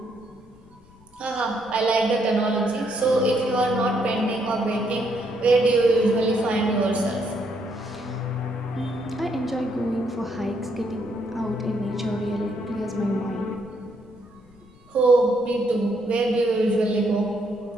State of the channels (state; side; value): noise; left; rumble, 26 dB below the sound